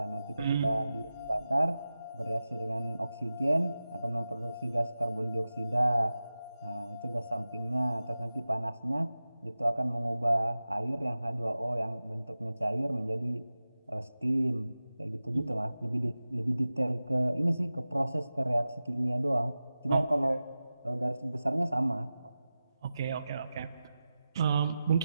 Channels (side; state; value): both; inverted; correlation -0.94